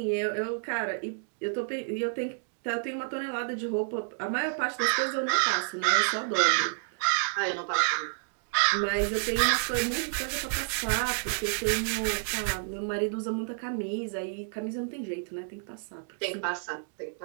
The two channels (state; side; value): silent; left; digital silence